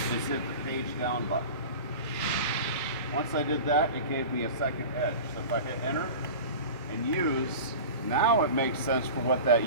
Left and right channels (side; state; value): both; inverted; correlation -0.34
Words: is hit the page down button. Once I did that, it gave me a second edge. So if I hit enter and use, now it makes sense for what that